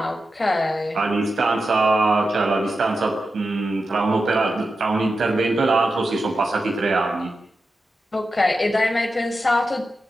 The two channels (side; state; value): both; normal; correlation 0.90